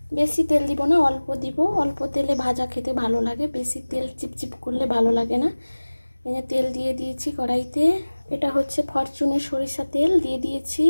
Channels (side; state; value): both; inverted; correlation -1.00